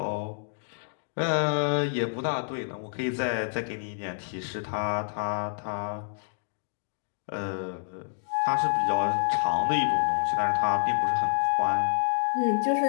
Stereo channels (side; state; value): right; silent; digital silence